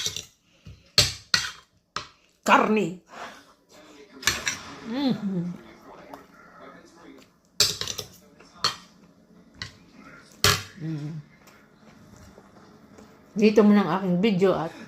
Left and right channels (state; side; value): identical; both; correlation 1.00